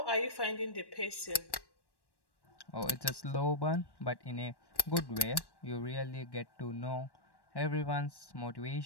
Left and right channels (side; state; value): right; late; 1.1 ms